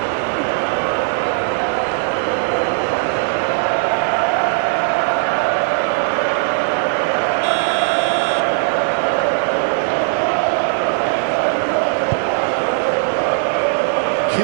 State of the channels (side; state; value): left; silent; digital silence